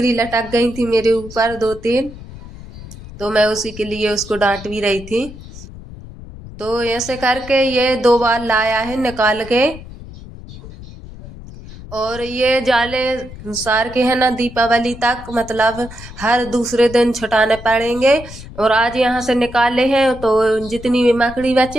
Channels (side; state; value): left; noise; rumble, 15 dB below the sound